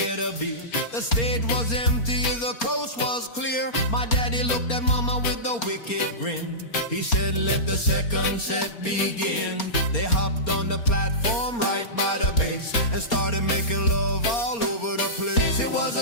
a beer. The stage was empty, the coast was clear. My daddy looked at mama with a wicked grin. He said, let the second set begin. They hopped on the platform right by the bass and started making love all over the place. It was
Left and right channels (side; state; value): right; late; 4.3 ms